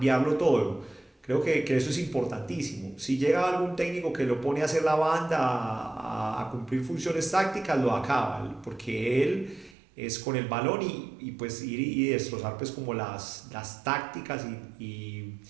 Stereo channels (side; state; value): left; drops out; at 9.8 s